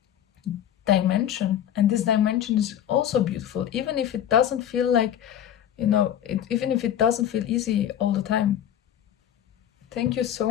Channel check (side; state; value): right; quieter; 10.4 dB